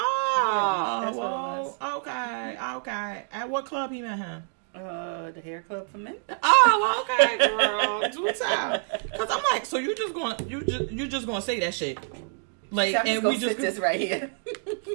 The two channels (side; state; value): left; silent; 60 dB below the other